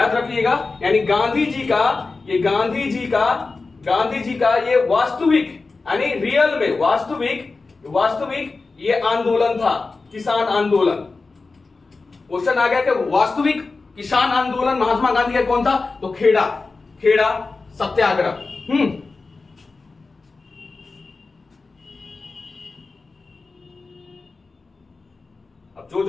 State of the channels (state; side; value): quieter; right; 3.9 dB